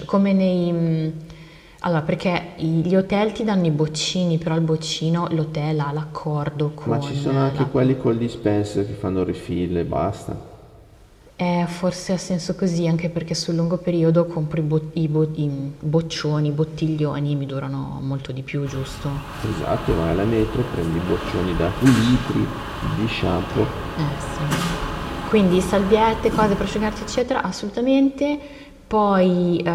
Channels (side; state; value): both; identical; correlation 1.00